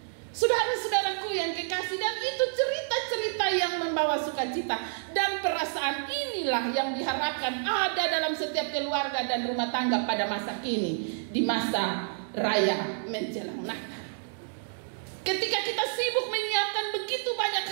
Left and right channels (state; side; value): silent; left; digital silence